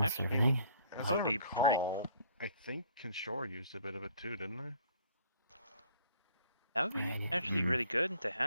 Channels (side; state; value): both; inverted; correlation -0.58